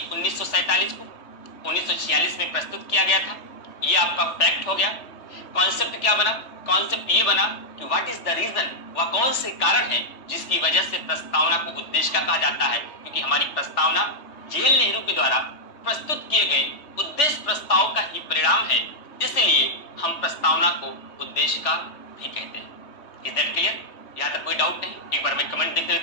1947 को। 1946 में प्रस्तुत किया गया था। यह आपका फैक्ट हो गया। कॉन्सेप्ट क्या बना? कॉन्सेप्ट ये बना कि व्हाट इज द रीजन, वह कौन से कारण है जिसकी वजह से प्रस्तावना को उद्देश्य का कहा जाता है, क्योंकि हमारी प्रस्तावना JL नेहरू के द्वारा प्रस्तुत किए गए उद्देश्य प्रस्ताव का ही परिणाम है। इसलिए हम प्रस्तावना को उद्देश्य का भी कहते हैं। Is that clear? यहां तक कोई डाउट नहीं? एक बार मैं कमेंट देख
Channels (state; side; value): late; right; 3.2 ms